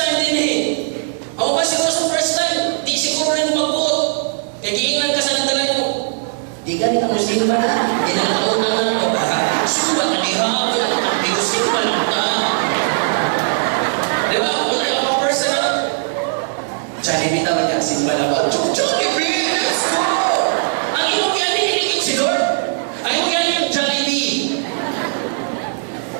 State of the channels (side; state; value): left; silent; digital silence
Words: din eh. Ako ba siguro sa first time, di siguro rin magbuot. Kaya giingnan ka sa nagdalay mo. Di ka ka musimba na. Di na nakauna na ako. Suba ka di ha. Wala ka kang simba lang ta. Di ba? Wala yung first time na. Jollibee tawag niya. Simba lang ba? Jollibee! Let's go! Ang iyong yan hiniligid si Lord. Ang iyong yan yung Jollibee.